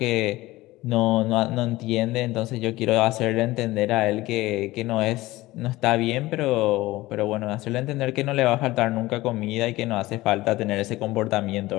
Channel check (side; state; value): right; quieter; 18.6 dB